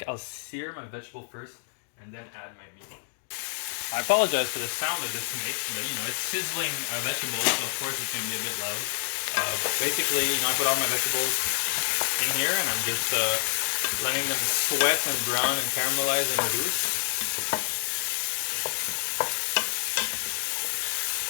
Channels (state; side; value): silent; right; digital silence